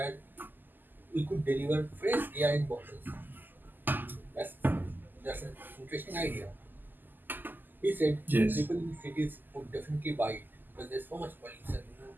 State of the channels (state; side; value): late; left; 0.089 ms